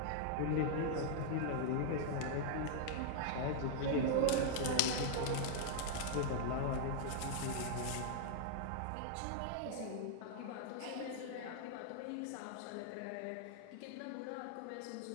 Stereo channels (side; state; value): both; different; correlation -0.01